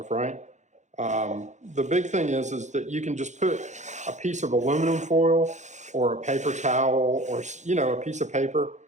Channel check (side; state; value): left; late; 0.34 ms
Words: right? The big thing is that you can just put a piece of aluminum foil or a paper towel or, you know, a piece of paper